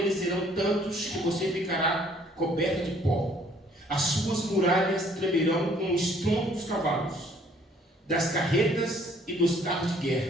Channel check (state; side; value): normal; both; correlation 0.60